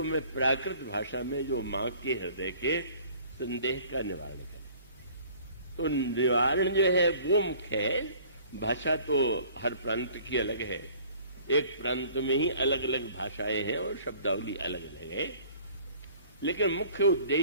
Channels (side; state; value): both; inverted; correlation -0.53